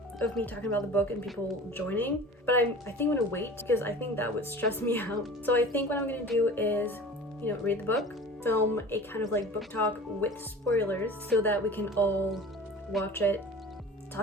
of me talking about the book and people joining, but I think I'm gonna wait because I think that would stress me out. So I think what I'm gonna do is, you know, read the book, film a kind of like book talk with spoilers so that we can all watch it,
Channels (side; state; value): both; normal; correlation 0.40